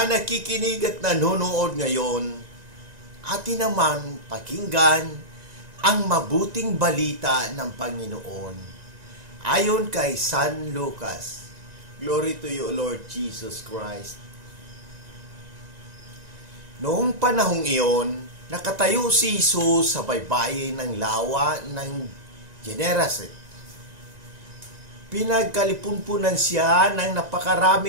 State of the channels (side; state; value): left; late; 1.9 ms